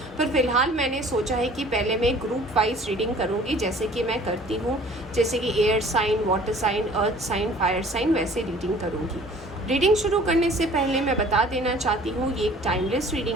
पर फिलहाल मैंने सोचा है कि पहले मैं ग्रुप वाइज रीडिंग करूँगी, जैसे कि मैं करती हूँ, जैसे कि air sign, water sign, earth sign, fire sign, वैसे रीडिंग करूँगी। रीडिंग शुरू करने से पहले मैं बता देना चाहती हूँ ये एक टाइमलेस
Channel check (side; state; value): both; normal; correlation 0.51